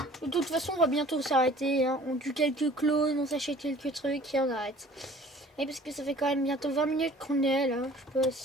De toute façon, on va bientôt s'arrêter. Hein. On tue quelques clones, on s'achète quelques trucs et on arrête. Et parce que ça fait quand même bientôt 20 minutes qu'on est là. Je sais pas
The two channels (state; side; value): normal; both; correlation 0.49